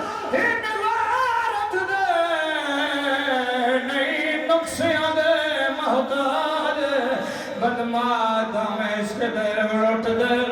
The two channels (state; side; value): identical; both; correlation 1.00